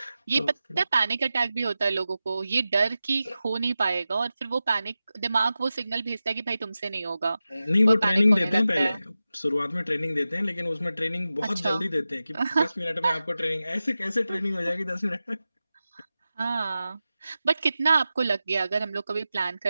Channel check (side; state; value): both; inverted; correlation -0.94